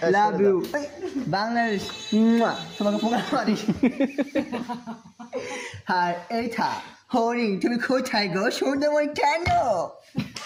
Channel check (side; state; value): both; identical; correlation 1.00